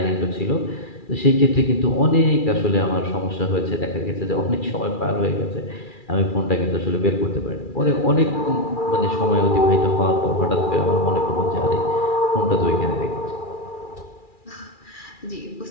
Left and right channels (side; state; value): right; late; 2.4 ms